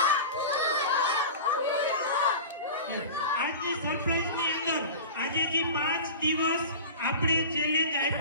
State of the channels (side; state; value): both; inverted; correlation -0.33